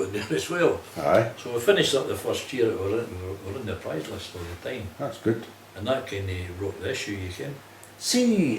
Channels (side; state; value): both; identical; correlation 1.00